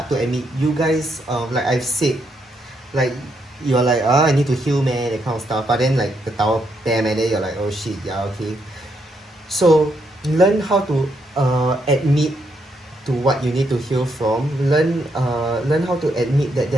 to admit, you guys, like I've said, like you're like, I need to heal, man, that kind of stuff. But then like the Tower, bam, and then you're like, oh shit, yeah, okay. So learn how to admit to what you need to heal from. Learn how to admit that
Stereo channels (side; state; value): both; normal; correlation 0.77